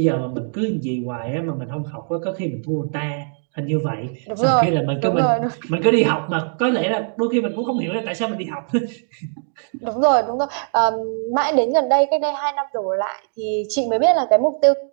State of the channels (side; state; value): left; silent; digital silence